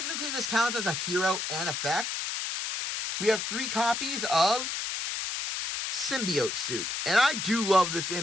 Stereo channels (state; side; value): noise; left; hiss, 3 dB below the sound